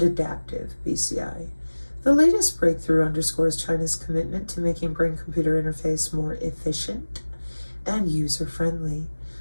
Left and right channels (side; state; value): both; inverted; correlation -1.00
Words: adaptive BCI. The latest breakthrough underscores China's commitment to making brain-computer interface more efficient and user-friendly